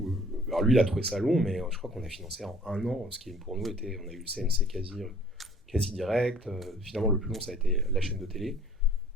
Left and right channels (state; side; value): normal; both; correlation 0.54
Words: alors lui il a trouvé ça long, mais je crois qu'on a financé en 1 an, ce qui pour nous était, on a eu le CNC quasi direct, finalement le plus long ça a été la chaîne de télé.